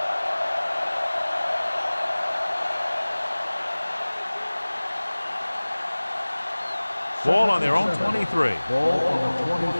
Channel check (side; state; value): both; inverted; correlation -1.00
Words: Ball on their own 23.